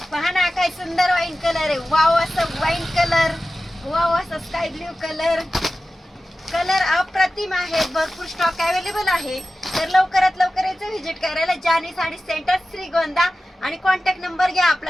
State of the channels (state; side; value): normal; both; correlation 0.95